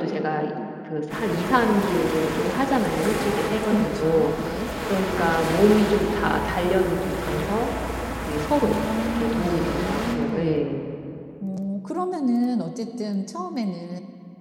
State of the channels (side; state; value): both; identical; correlation 1.00